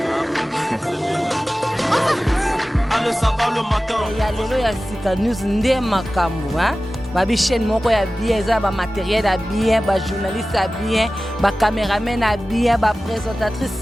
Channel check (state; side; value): normal; both; correlation 0.96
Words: il y a lelo ya sika news ndé makambo hein babi chaîne moko ya bien za ba matériel ya bien ba journaliste ya bien ba caméraman ya bien ba présentatrice